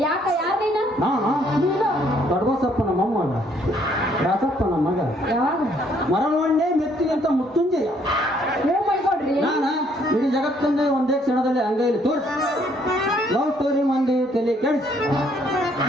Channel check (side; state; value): both; normal; correlation 0.66